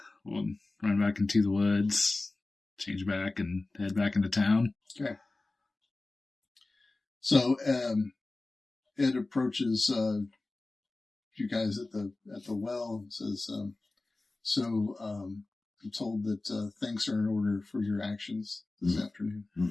run back into the woods, change back, and head back into town. Okay. So Ed approaches you guys at the well and says, I'm told that thanks are in order for your actions this afternoon.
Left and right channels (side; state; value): right; quieter; 3.1 dB